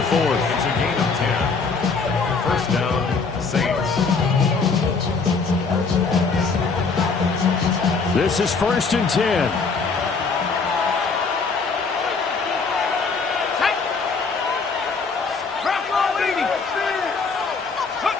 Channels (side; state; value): right; quieter; 4.7 dB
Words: 4th. It's a gain of 10. 1st down, Saints. This is 1st and 10.